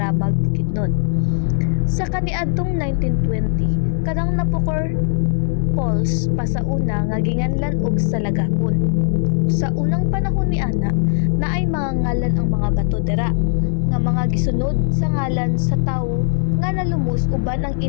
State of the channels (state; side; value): silent; right; digital silence